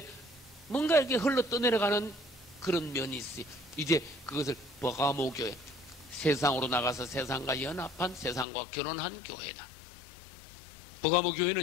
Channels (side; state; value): right; drops out; at 8.5 s